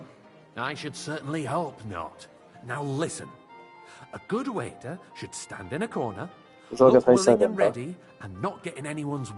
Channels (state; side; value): identical; both; correlation 1.00